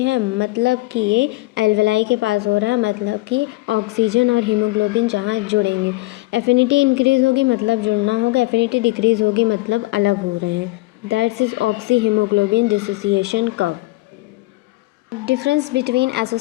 मतलब कि ये एल्वेलाई के पास हो रहा है, मतलब कि ऑक्सीजन और हीमोग्लोबिन जहाँ जुड़ेंगे। एफिनिटी इंक्रीज़ होगी मतलब जुड़ना होगा, एफिनिटी डिक्रीज़ होगी मतलब अलग हो रहे हैं। That's is oxy haemoglobin dissociation curve. Difference between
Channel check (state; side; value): quieter; right; 20.8 dB